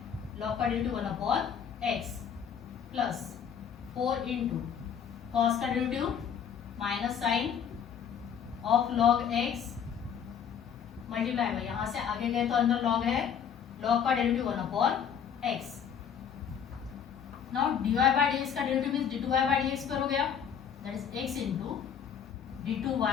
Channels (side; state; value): right; quieter; 7.8 dB